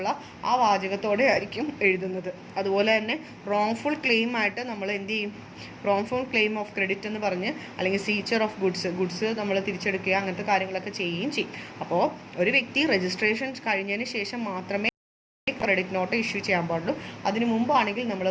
ആ വാചകത്തോടെ ആയിരിക്കും എഴുതുന്നത്. അതുപോലെ തന്നെ റോങ്ഫുൾ ക്ലെയിം ആയിട്ട് നമ്മൾ എന്ത് ചെയ്യും, റോങ്ഫുൾ ക്ലെയിം ഓഫ് ക്രെഡിറ്റ് എന്ന് പറഞ്ഞ് അല്ലെങ്കിൽ സീച്ചർ ഓഫ് ഗുഡ്സ് നമ്മൾ തിരിച്ചെടുക്കുക, അങ്ങനത്തെ കാര്യങ്ങളൊക്കെ ചെയ്യുകയും ചെയ്യും. അപ്പോൾ ഒരു വ്യക്തി രജിസ്ട്രേഷൻ കഴിഞ്ഞതിന് ശേഷം മാത്രമേ ക്രെഡിറ്റ് നോട്ട് ഇഷ്യൂ ചെയ്യാൻ പാടുള്ളൂ. അതിനു മുമ്പാണെങ്കിൽ നമ്മൾ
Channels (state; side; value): identical; both; correlation 1.00